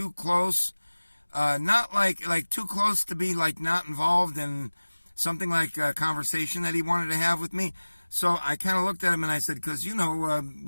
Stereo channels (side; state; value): both; inverted; correlation -1.00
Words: close, not like too close to be like not involved in something like a conversation that he wanted to have with me. So I kind of looked at him and I said, because, we